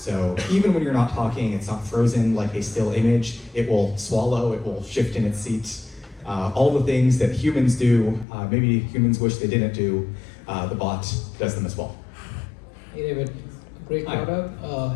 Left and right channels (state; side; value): drops out; right; at 8.2 s